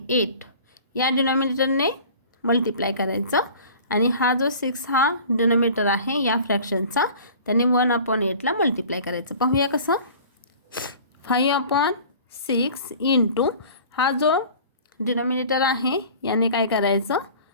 8, या डिनॉमिनेटरने मल्टिप्लाय करायचं. आणि हा जो 6 हा डिनॉमिनेटर आहे या फ्रॅक्शनचा, त्याने 1/8ला मल्टिप्लाय करायचं. पाहूया कसं. 5/6 इंटू हा जो डिनॉमिनेटर आहे याने काय करायचं,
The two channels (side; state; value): both; inverted; correlation -0.44